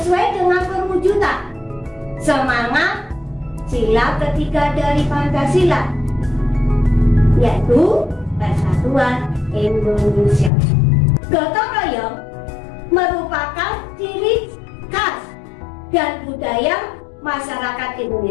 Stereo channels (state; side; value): drops out; right; at 10.5 s